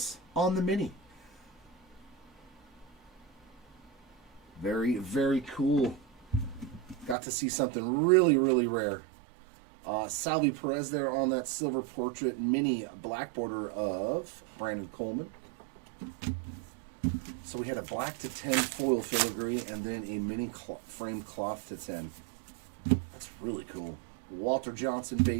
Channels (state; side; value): drops out; left; at 7.2 s